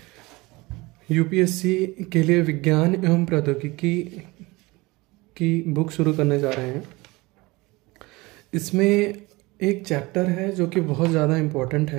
यूपीएससी के लिए विज्ञान एवं प्रौद्योगिकी की बुक शुरू करने जा रहे हैं। इसमें एक चैप्टर है जो कि बहुत ज़्यादा इम्पोर्टेंट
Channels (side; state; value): left; quieter; 22.7 dB